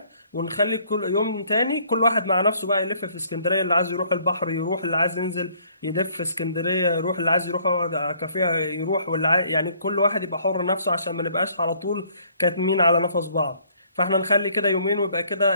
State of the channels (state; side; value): inverted; both; correlation -0.62